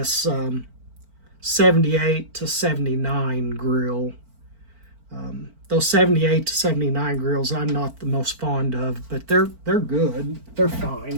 78 to 79 grill. Those 78 to 79 grills I'm not the most fond of, but they're good. They're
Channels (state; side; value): late; left; 4.4 ms